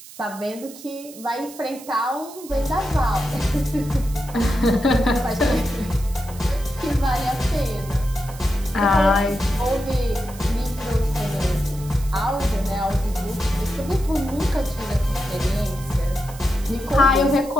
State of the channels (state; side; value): noise; right; hiss, 17 dB below the sound